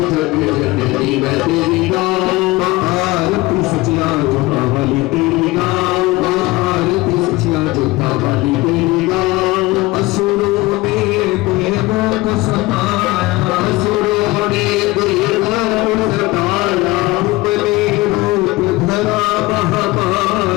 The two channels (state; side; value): quieter; right; 20.4 dB